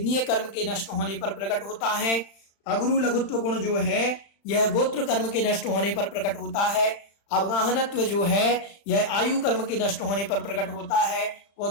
कर्म के नष्ट होने पर प्रकट होता है। अगुरु लघुत्व गुण जो है यह गोत्र कर्म के नष्ट होने पर प्रकट होता है। अवगाहनत्व जो है यह आयु कर्म के नष्ट होने पर प्रकट होता है।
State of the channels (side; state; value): right; late; 35 ms